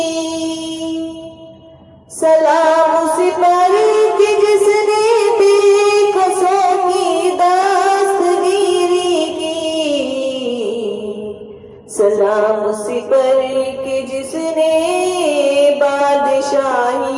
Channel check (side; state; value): both; identical; correlation 1.00